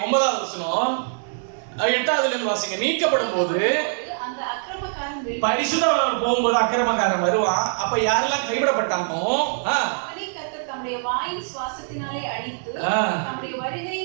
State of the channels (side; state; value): left; silent; 63 dB below the other